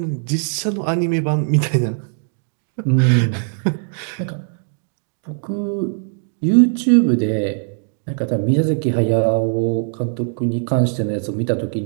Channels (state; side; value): silent; left; digital silence